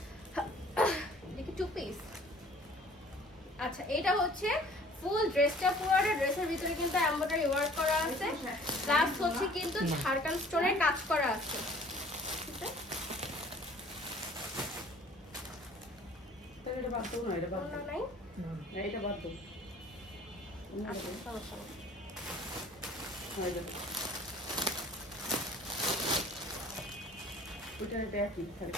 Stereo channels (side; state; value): both; normal; correlation 0.52